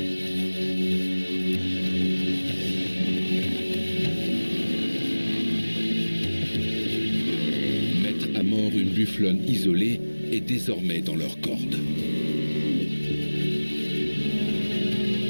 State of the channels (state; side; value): inverted; both; correlation -1.00